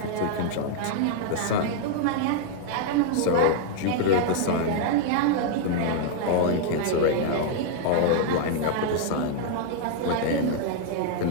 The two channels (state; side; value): different; both; correlation 0.00